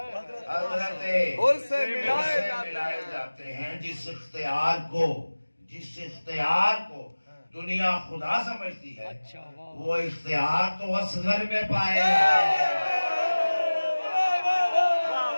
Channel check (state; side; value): inverted; both; correlation -1.00